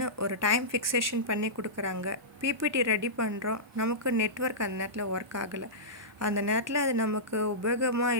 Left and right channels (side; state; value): both; normal; correlation -0.16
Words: ஒரு டைம் ஃபிக்ஸேஷன் பண்ணி கொடுக்குறாங்க. பிபிடி ரெடி பண்ணுறோம், நமக்கு நெட்ஒர்க் அந்த நேரத்தில் ஒர்க் ஆகலை. அந்த நேரத்தில் அது நமக்கு உபயோகமாக